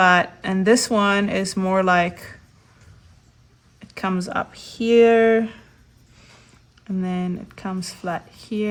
this one is more like, it comes up here, and then it comes flat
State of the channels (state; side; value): identical; both; correlation 1.00